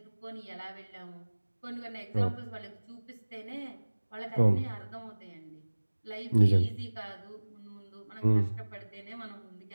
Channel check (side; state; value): both; inverted; correlation -1.00